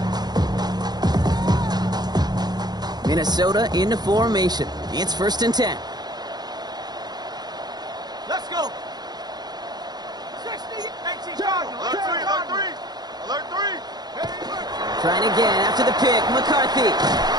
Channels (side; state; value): left; late; 0.20 ms